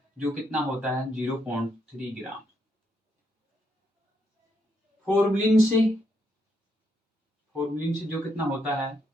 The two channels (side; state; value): both; normal; correlation 0.77